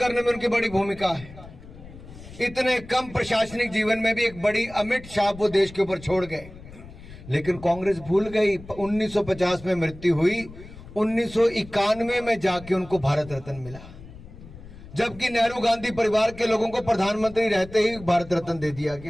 में उनकी बड़ी भूमिका है। इतने कम प्रशासनिक जीवन में भी एक बड़ी अमिट छाप वो देश के ऊपर छोड़ गए, लेकिन कांग्रेस भूल गई। 1950 में मृत्यु हुई, 1991 में जाके उनको भारत रत्न मिला, जबकि नेहरू गांधी परिवार के लोगों को प्रधानमंत्री रहते ही भारत रत्न दे दिया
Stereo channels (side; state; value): left; noise; rumble, 17 dB below the sound